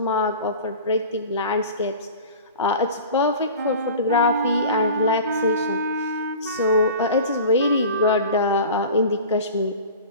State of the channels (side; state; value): both; inverted; correlation -0.38